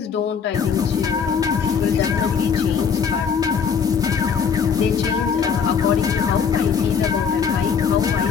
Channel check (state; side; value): quieter; right; 6.6 dB